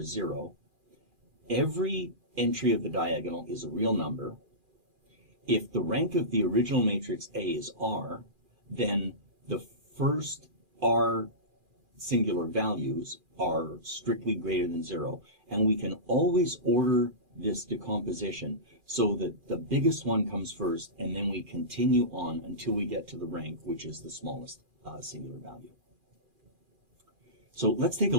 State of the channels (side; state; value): left; late; 2.4 ms